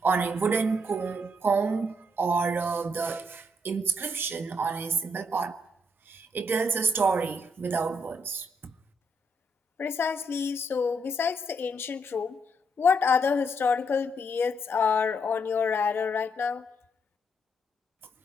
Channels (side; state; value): both; normal; correlation 0.75